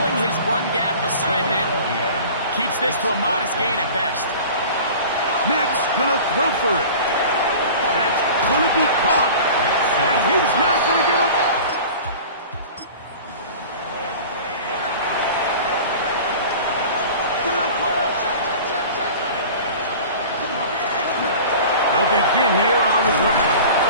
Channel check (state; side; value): inverted; both; correlation -0.40